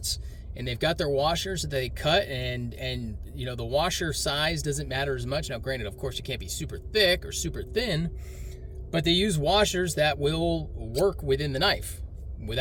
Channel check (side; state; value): both; identical; correlation 1.00